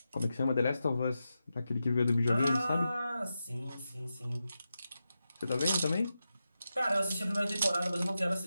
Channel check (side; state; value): both; inverted; correlation -0.90